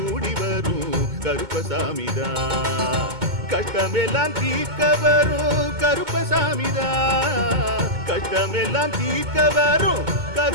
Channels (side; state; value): left; late; 2.2 ms